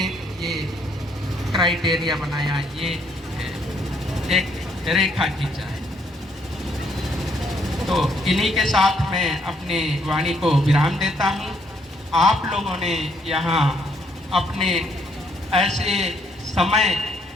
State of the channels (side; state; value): both; normal; correlation 0.70